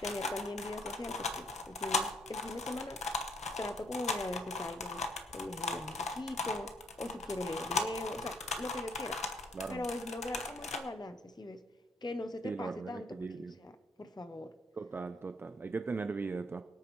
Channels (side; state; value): both; normal; correlation 0.66